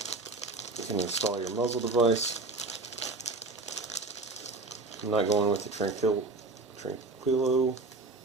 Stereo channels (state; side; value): quieter; left; 3.3 dB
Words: you can install your muzzle device. I'm not going with the Tranquilo. You